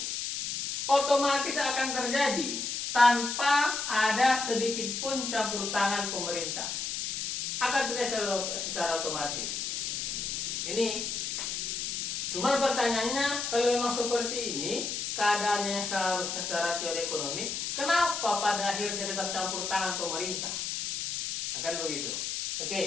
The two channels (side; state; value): left; noise; hiss, 3 dB below the sound